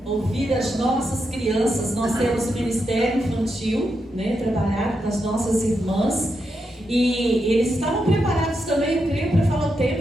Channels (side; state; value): both; normal; correlation 0.84